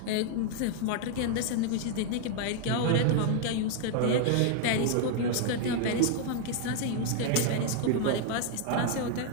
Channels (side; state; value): both; different; correlation 0.00